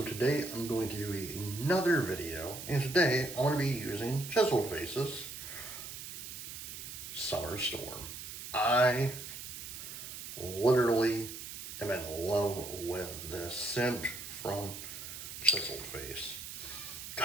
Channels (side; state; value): right; noise; hiss, 9 dB below the sound